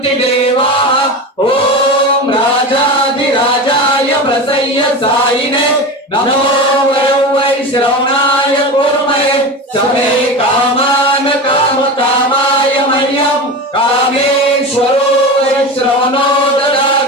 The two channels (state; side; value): normal; both; correlation 0.26